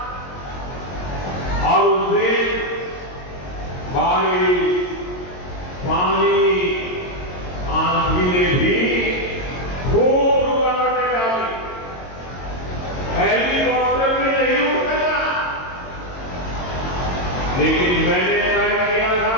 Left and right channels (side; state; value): right; late; 22 ms